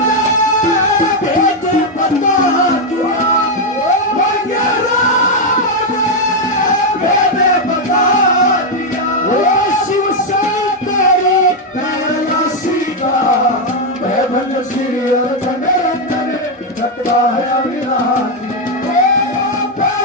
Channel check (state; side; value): normal; both; correlation 0.02